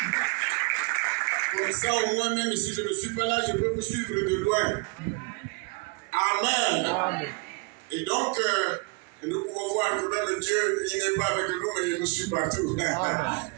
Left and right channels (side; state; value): left; quieter; 30.6 dB